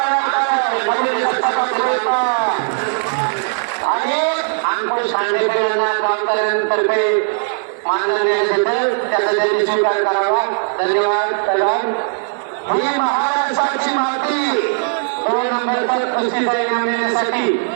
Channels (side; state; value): left; silent; 56 dB below the other